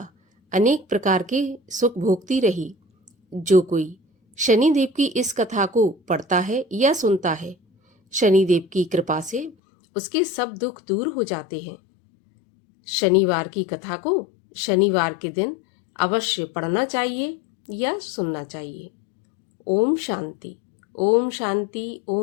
अनेक प्रकार के सुख भोगती रही। जो कोई शनिदेव की इस कथा को पढ़ता है या सुनता है, शनिदेव की कृपा से उसके सब दुख दूर हो जाते हैं। शनिवार की कथा को शनिवार के दिन अवश्य पढ़ना चाहिए या सुनना चाहिए। ओम शांति, ओम शांति,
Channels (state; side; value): drops out; right; at 9.6 s